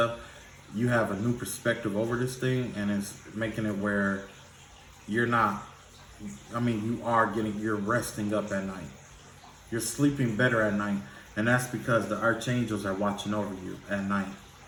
you have a new perspective over this thing, and it's making it where you're not, you're resting up at night. You're sleeping better at night. And that's because the archangels are watching over you at night.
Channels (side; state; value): both; identical; correlation 1.00